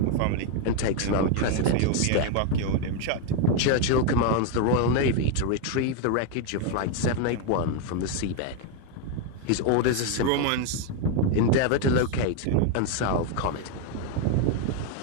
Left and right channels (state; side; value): different; both; correlation 0.01